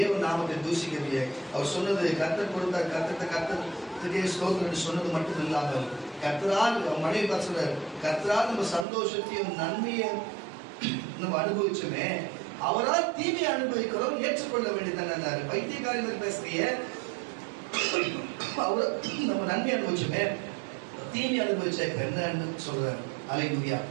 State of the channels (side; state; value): left; drops out; at 8.8 s